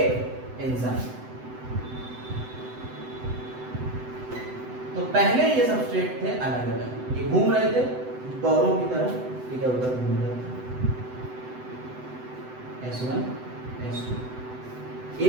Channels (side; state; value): left; late; 7.9 ms